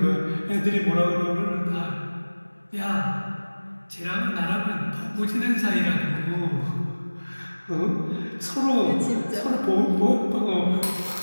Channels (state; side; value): inverted; both; correlation -1.00